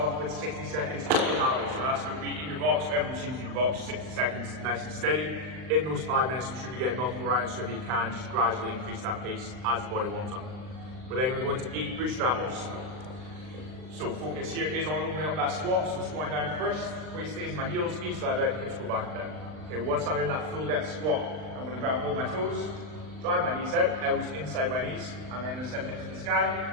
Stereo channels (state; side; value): late; left; 39 ms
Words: off with 60 seconds of calories, so that's going to be in your box, whatever machine's in your box, 60 seconds, nice and steady. In those 5 minutes, we should be getting multiple rounds, so if you can, just gradually increase that pace as the body warms up. We're then going to go into 8 bootstrap lifts. So focus here is on opening up that squat, so squatting down first, weight stays in my heels, knees slide out, hips go back and down. Okay, once I'm in that full depth squat, I'm going to grab hold my toes, drive my knees out, elbows inside my knees, and then send hips to the